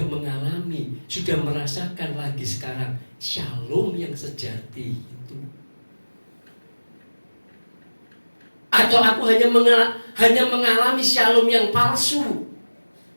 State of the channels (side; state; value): both; inverted; correlation -1.00